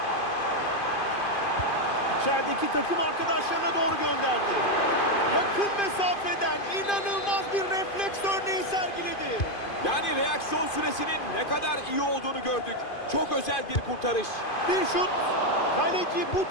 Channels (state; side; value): late; right; 2.5 ms